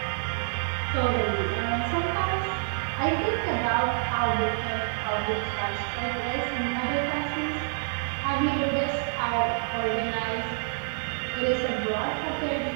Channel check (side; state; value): left; silent; digital silence